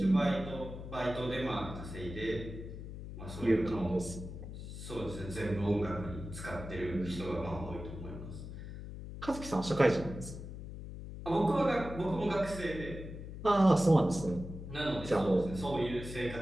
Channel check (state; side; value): noise; left; hum, 10 dB below the sound